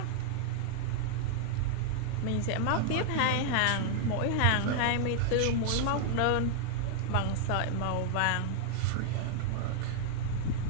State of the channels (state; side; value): different; both; correlation -0.01